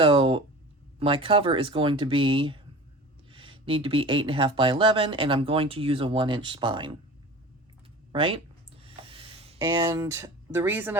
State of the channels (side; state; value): both; normal; correlation 0.38